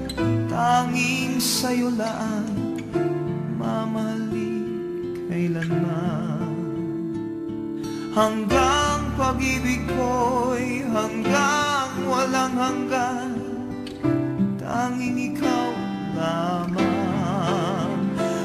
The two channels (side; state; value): both; identical; correlation 1.00